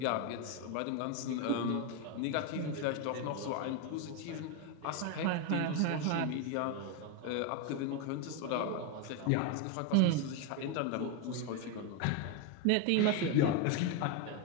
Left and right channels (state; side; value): different; both; correlation 0.02